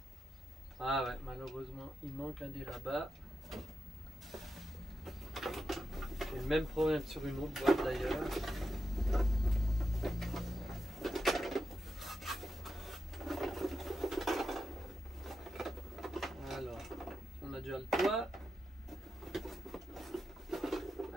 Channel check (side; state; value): both; normal; correlation 0.87